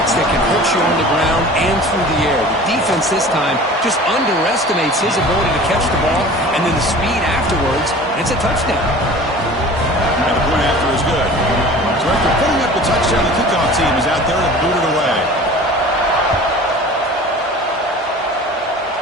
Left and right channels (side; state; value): both; normal; correlation 0.41